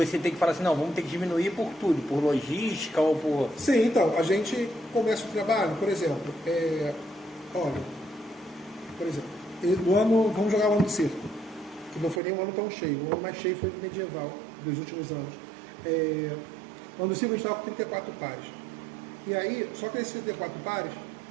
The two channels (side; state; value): left; drops out; at 12.2 s